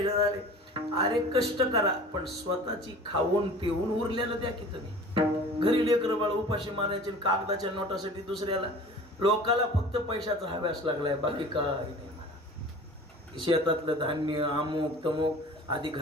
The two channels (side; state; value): both; normal; correlation 0.42